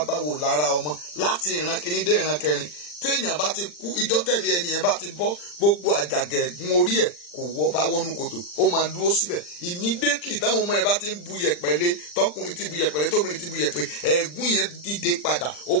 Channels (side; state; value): right; late; 40 ms